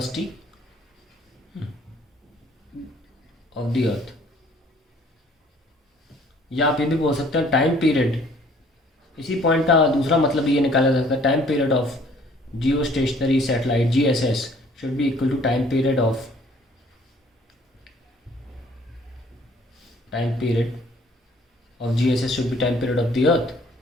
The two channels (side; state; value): both; normal; correlation 0.58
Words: of the earth, या आप ये भी बोल सकते हैं टाइम पीरियड. इसी पॉइंट का दूसरा मतलब ये निकाला जा सकता है, time period of geostationary satellite GSS should be equal to time period of GSS should be time period of the earth,